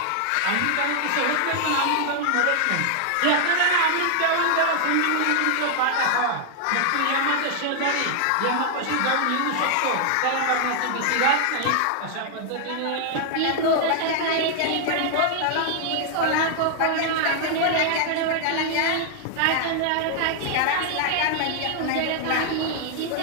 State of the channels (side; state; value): both; different; correlation 0.00